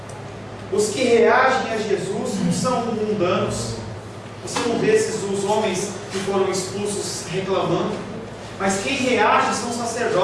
Os que reagem a Jesus não são mundanos. Você não vê os homens que foram expulsos reclamando, mas quem reage são os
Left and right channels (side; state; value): both; identical; correlation 1.00